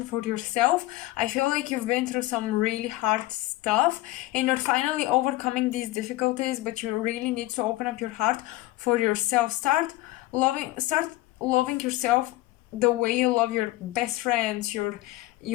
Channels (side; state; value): right; quieter; 18.2 dB